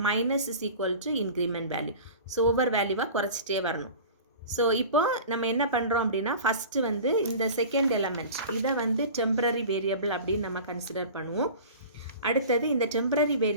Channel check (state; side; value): inverted; both; correlation -0.38